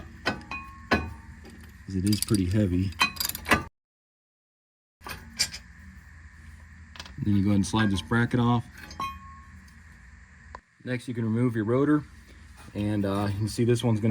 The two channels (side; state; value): both; identical; correlation 1.00